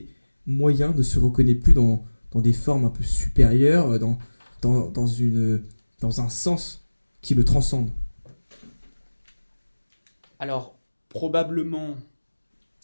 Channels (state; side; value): inverted; both; correlation -1.00